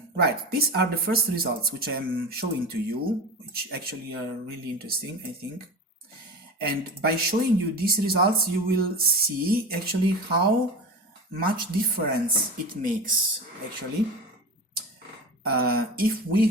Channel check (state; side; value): normal; both; correlation 0.28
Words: Right, these are the first results which I'm showing to you, which actually are really interesting, I think. And by showing you these results, you will see actually how much difference it makes. Actually, if we